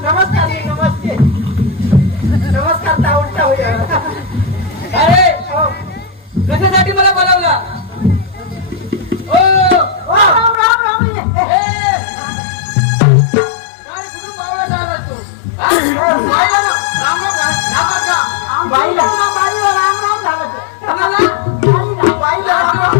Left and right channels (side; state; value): right; drops out; at 10.6 s